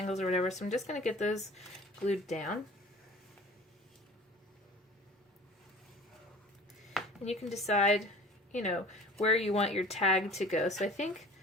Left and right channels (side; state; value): both; normal; correlation 0.44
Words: or whatever, so I'm just going to get those glued down. And you can decide you know, where you want your tag to go. So I think